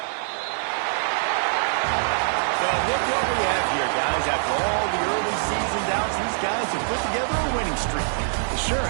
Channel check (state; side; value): silent; left; digital silence